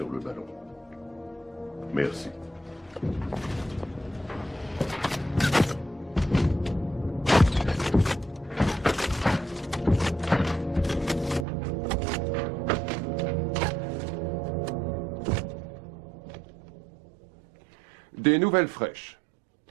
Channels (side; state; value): left; drops out; at 11.5 s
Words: le ballon. Merci. Des nouvelles fraîches.